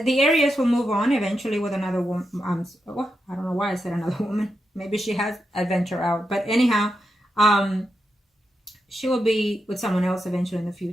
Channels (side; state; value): both; normal; correlation 0.86